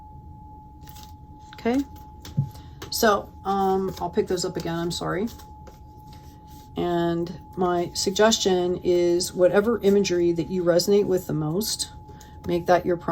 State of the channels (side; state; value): both; identical; correlation 1.00